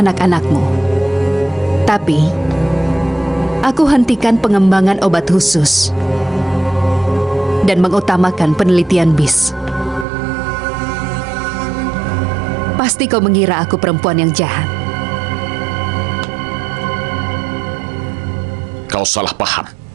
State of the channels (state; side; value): drops out; left; at 10.1 s